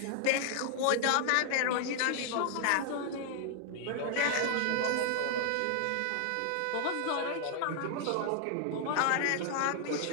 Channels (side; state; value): both; different; correlation 0.00